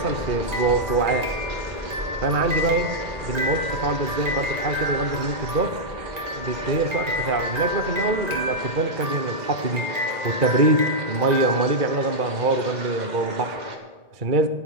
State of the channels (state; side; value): late; left; 1.9 ms